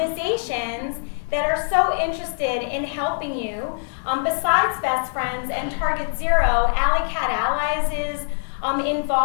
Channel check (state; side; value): silent; right; digital silence